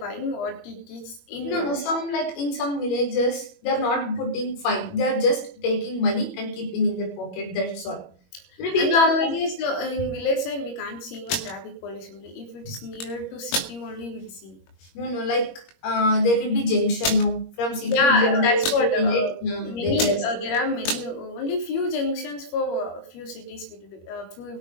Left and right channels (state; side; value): late; right; 21 ms